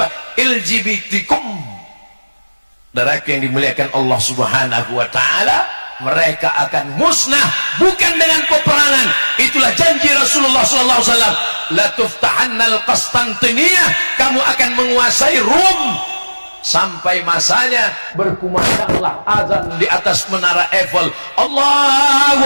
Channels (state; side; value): inverted; both; correlation -1.00